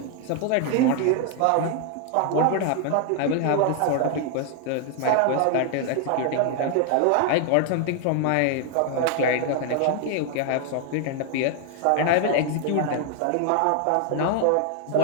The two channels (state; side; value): different; both; correlation 0.00